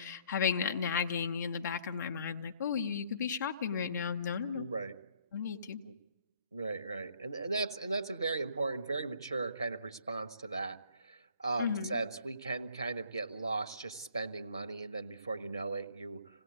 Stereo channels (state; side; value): inverted; both; correlation -0.61